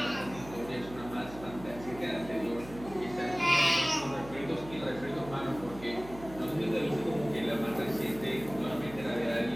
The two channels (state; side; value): noise; right; hum, 15 dB below the sound